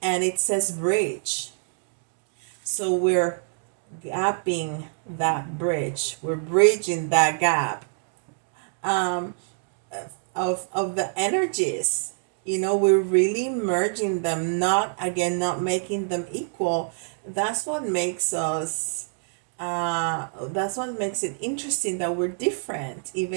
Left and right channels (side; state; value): left; silent; digital silence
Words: and it says bridge. So we're gapping that bridge. We're bridging that gap of the energies. You know, we're really merging them, not making them equal. That's what makes us that's what makes it interesting, that we're different,